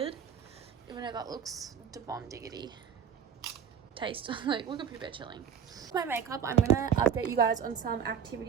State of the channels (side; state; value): left; quieter; 7.8 dB